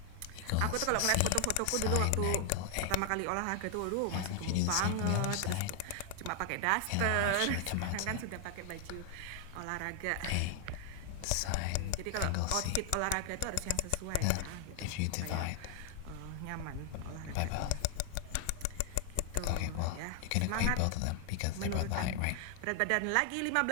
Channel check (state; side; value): different; both; correlation 0.00